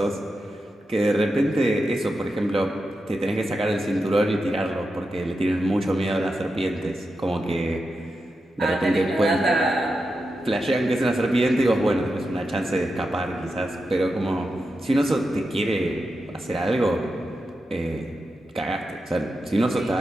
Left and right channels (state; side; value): normal; both; correlation 0.89